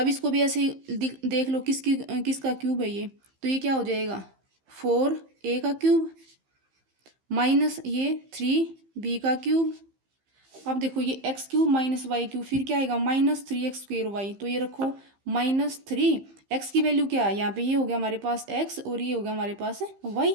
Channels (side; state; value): left; late; 15 ms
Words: इसको भी ऐसे ही देख लो किसका क्यूब है ये, तो ये क्या हो जाएगा 4a का क्यूब माइनस ये 3b का क्यूब। अब देखो ये x cube minus y cube, फिर क्या आएगा माइनस 3x स्क्वेयर वाई, तो ये रखो माइनस 3। एक्स की वैल्यू क्या है यहाँ पे, ये हो गया हमारे पास x और ये हो गया हमारे पास y,